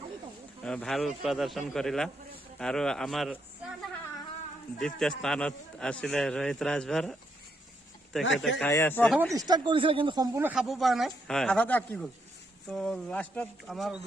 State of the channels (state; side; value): normal; both; correlation 0.78